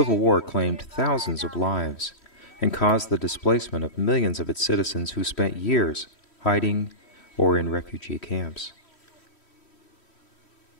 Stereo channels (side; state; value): right; late; 3.1 ms